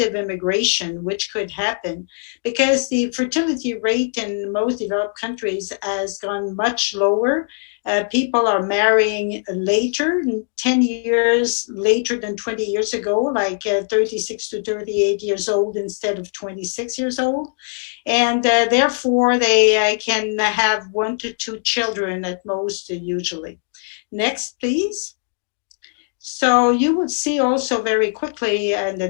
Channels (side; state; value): right; silent; digital silence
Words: immigration, which could happen, because the fertility rate in most developed countries has gone much lower. People are marrying later, 10 years later than 20 years ago, like 36 to 38 years old instead of 26 years old. And therefore, they can have 1 to 2 children at most, usually. Next, please. So you will see also very quickly in the